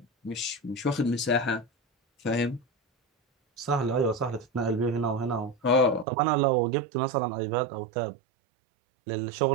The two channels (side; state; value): left; drops out; at 6.1 s